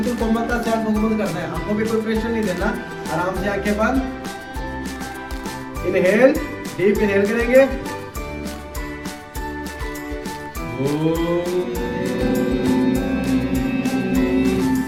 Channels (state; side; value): identical; both; correlation 1.00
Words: कोमलता से आंखों को बंद करना है। आंखों पे कोई प्रेशर नहीं देना, आराम से आंखें बंद, इनहेल, डीप इनहेल करेंगे,